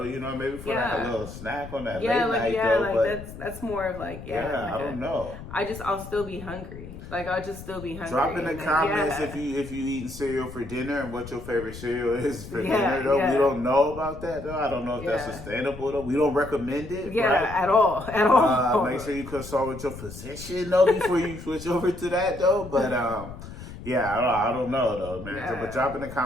maybe for like a little snack on that late night that's more of like, I don't know. I'll still be hungry. Like, I'll just still be hungry. Drop in the comments if you eating cereal for dinner and what your favorite cereal is for dinner though. We don't know about that though. I don't know if that's sustainable though. We don't recommend it. Right? At all. Make sure you consult with your physician though before you switch over to that though. But Yeah, I don't know though, man. Yeah. But drop in the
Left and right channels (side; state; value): left; noise; rumble, 13 dB below the sound